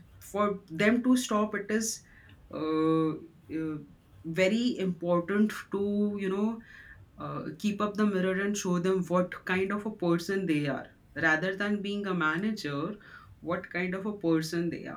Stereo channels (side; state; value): both; identical; correlation 1.00